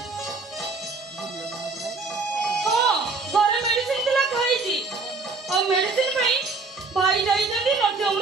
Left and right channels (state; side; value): quieter; left; 4.0 dB